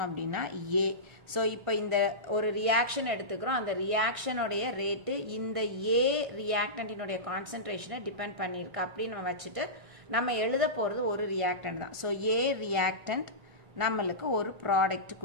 அப்படின்னா A. So இப்போ இந்த ஒரு ரியாக்ஷன் எடுத்துக்கிறோம். அந்த ரியாக்ஷனுடைய ரேட்டு இந்த A ரியாக்டன்டினுடைய கான்சென்ட்ரேஷனை டிபெண்ட் பண்ணியிருக்கு அப்படின்னு நம்ம வச்சுட்டு நம்ம எழுத போறது ஒரு ரியாக்டன்ட் தான். ஸோ A ரியாக்டன்ட் நம்மளுக்கு ஒரு ப்ராடக்ட்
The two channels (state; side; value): late; left; 1.6 ms